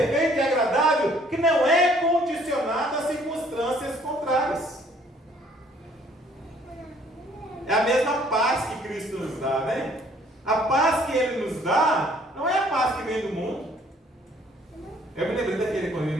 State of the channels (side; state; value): both; normal; correlation 0.60